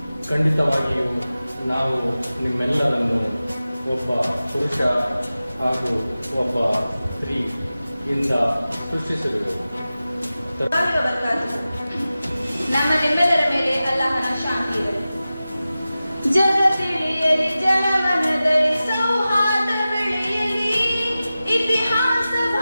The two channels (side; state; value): both; inverted; correlation -0.95